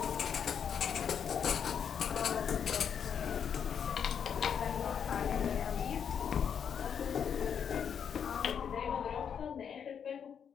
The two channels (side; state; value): right; quieter; 7.7 dB